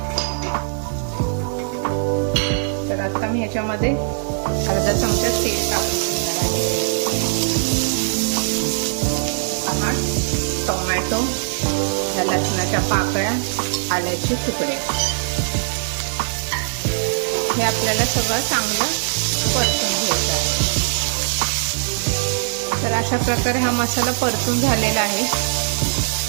तर आता मी ह्याच्यामध्ये अर्धा चमचा तेल टाकून घेणार आहे। टोमॅटो, लसणाच्या पाकळ्या, आल्याचे तुकडे, हे आपल्याला सगळं चांगलं परतून घ्यायचं आहे। तर अशा प्रकारे हा मसाला परतून झालेला आहे।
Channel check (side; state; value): left; silent; digital silence